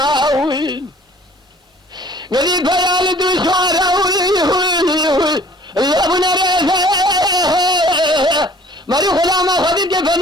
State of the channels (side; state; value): both; normal; correlation 0.51